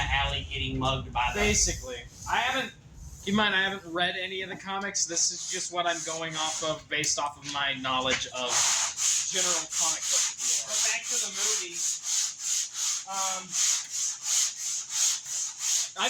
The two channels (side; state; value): both; identical; correlation 1.00